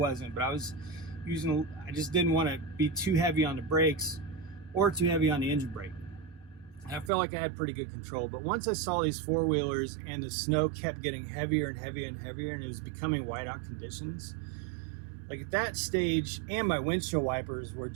but I just didn't want to be too heavy on the brakes or too heavy on the engine brake. I felt like I had pretty good control, but once I saw these four-wheelers and the snow kept getting heavier and heavier and heavier, and it was becoming whiteout conditions, like at that stage, and my windshield wipers were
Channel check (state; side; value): drops out; left; at 7.1 s